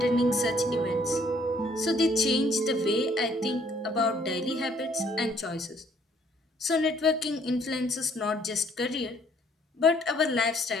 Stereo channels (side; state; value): both; normal; correlation 0.63